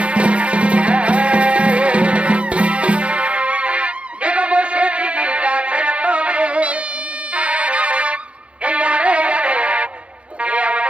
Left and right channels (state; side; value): late; left; 0.060 ms